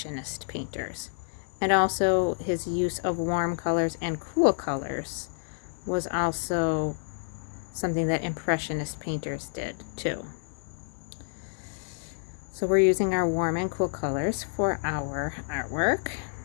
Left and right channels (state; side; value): silent; right; 59 dB below the other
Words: painters. And also his use of warm colors and cool colors was also something that Impressionist painters did too. So we're using our warm and cool colors for our artwork.